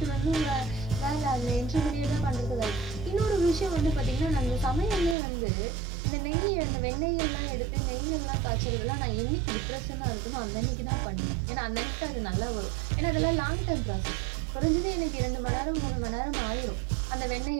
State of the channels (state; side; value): drops out; left; at 5.2 s